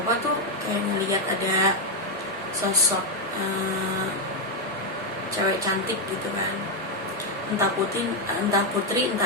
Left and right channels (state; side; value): normal; both; correlation 0.02